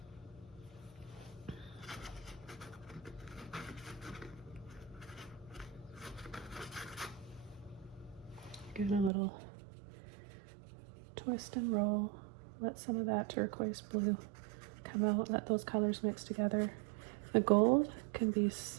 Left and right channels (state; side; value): drops out; left; at 9.1 s